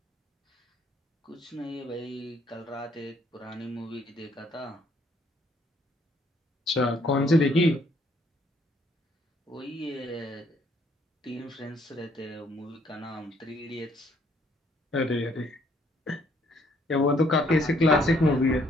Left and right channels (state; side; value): normal; both; correlation 0.67